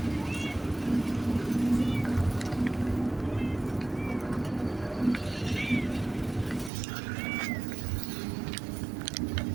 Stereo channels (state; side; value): drops out; left; at 6.7 s